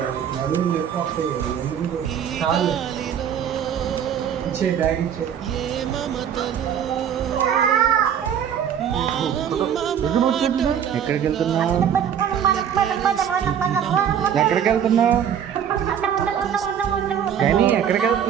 నడుము లేకపోతే ఇచ్చే బ్యాగ్ ఇచ్చే ఎక్కడికి వెళ్తున్నావు? ఎక్కడికి వెళ్తున్నావు? కానీ ఎక్కడికి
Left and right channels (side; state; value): left; quieter; 8.7 dB